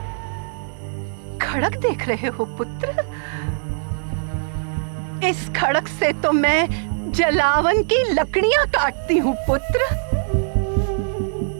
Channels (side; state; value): left; silent; digital silence